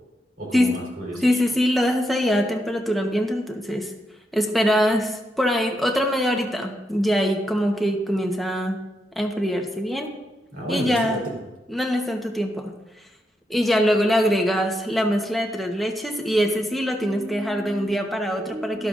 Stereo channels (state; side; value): normal; both; correlation 0.82